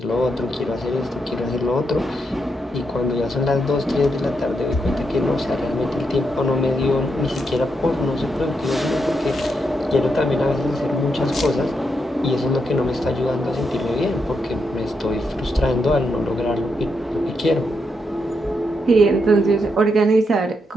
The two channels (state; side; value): normal; both; correlation 0.82